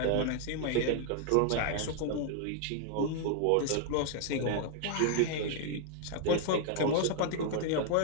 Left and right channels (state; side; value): different; both; correlation 0.00